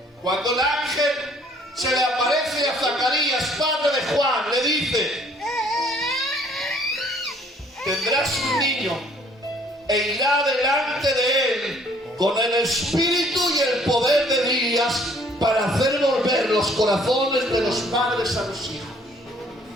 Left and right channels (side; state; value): both; normal; correlation 0.60